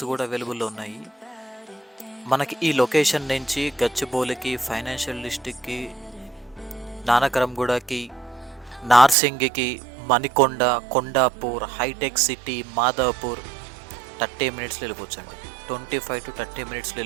కూడా అవైలబుల్లో ఉన్నాయి. మనకి ఈ లొకేషన్ నుంచి గచ్చిబౌలికి, ఫైనాన్షియల్ డిస్ట్రిక్ట్కి, నానకరంగూడకి, నార్సింగికి, మణికొండ, కొండాపూర్, హైటెక్ సిటీ, మాదాపూర్ 30 minutesలో వెళ్ళిపోవచ్చు అండి. 25 to 30 minutesలో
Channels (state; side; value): drops out; left; at 9.2 s